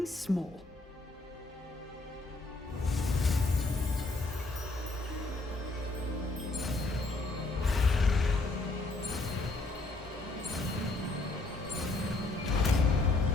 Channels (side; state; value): right; quieter; 3.2 dB